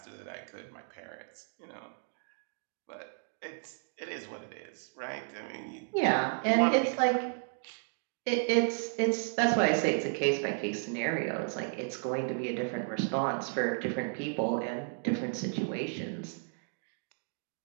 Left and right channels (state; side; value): silent; left; 56 dB below the other